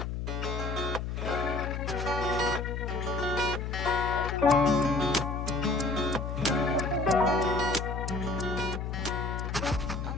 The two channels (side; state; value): left; noise; hum, 4 dB below the sound